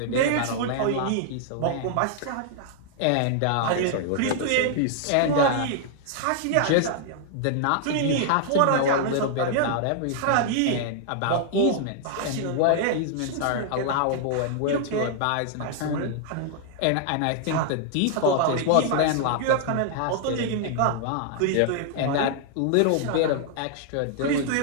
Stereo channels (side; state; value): both; different; correlation -0.01